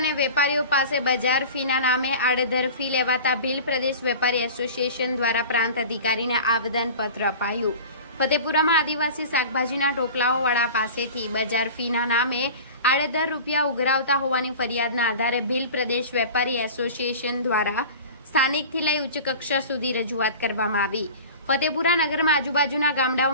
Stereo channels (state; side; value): inverted; both; correlation -0.37